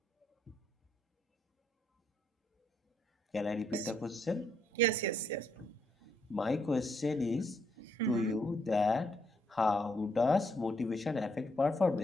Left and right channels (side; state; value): both; normal; correlation 0.73